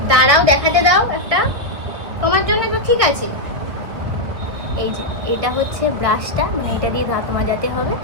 দাঁড়াও দেখাতে দাও একটা তোমার জন্য। তো ঠিক আছে, এই যে এটা হচ্ছে ব্রাশটা, মানে এটা দিয়ে দাঁত মাজাতে হবে।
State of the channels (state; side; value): late; left; 1.9 ms